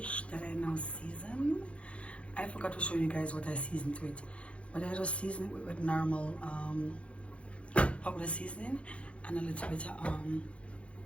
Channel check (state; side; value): late; right; 0.061 ms